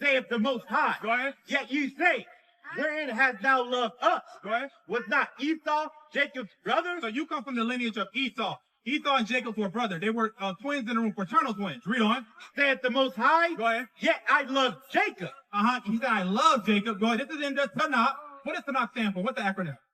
the Most High. Go ahead. Yet you say, wherein hast thou loved us? Go ahead. Was not Esau Jacob's brother? So you come from the lineage of Esau. Esau and Jacob were brothers. They were twins in the room, fraternal twins. Read on. Saith the Most High. Go ahead. Yet I love Jacob. He said, I love Jacob. Go ahead. This is in the Tanakh. What does Tanakh stand for? What's the acronym?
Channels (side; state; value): both; identical; correlation 1.00